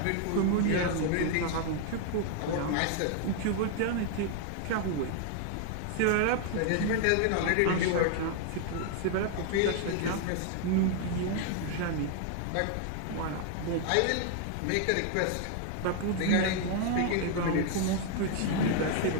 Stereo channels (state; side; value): different; both; correlation 0.00